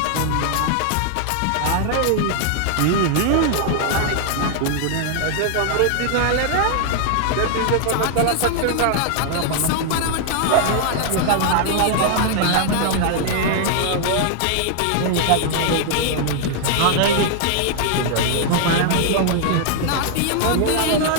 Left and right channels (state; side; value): different; both; correlation 0.00